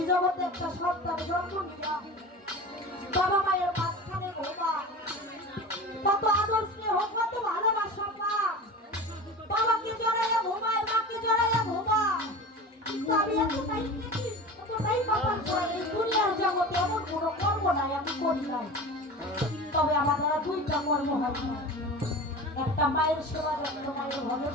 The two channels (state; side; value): normal; both; correlation 0.32